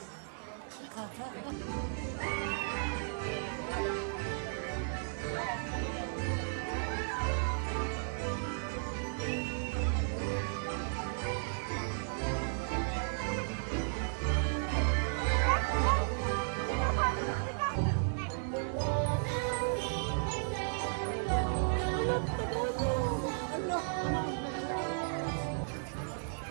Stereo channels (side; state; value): left; silent; 55 dB below the other